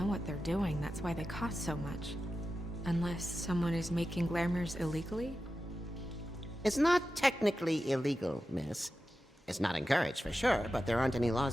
what they're doing, that's why they cost so much. Unless someone is making glamours illegally? It's not technically illegal, miss. It's not encouraged for sure, but there aren't any laws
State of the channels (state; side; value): normal; both; correlation 0.92